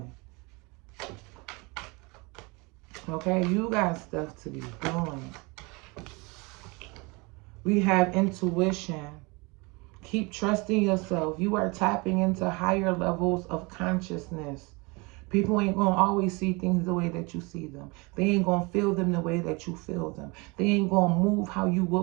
Okay? You got stuff to be doing. We have intuition. Keep trusting yourself. You are tapping into higher levels of consciousness. People ain't going to always see things the way that you see them. They ain't going to feel them the way that you feel them. They ain't going to move how you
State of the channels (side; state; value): left; quieter; 27.3 dB